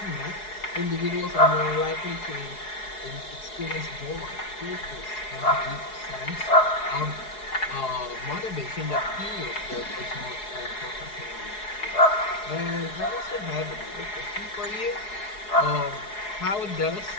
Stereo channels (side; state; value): right; late; 4.8 ms